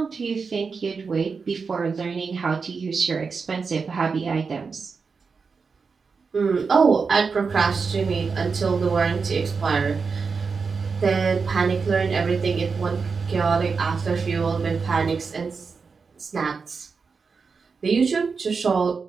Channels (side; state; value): left; quieter; 5.1 dB